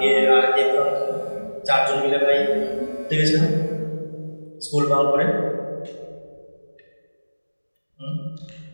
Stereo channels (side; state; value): both; inverted; correlation -1.00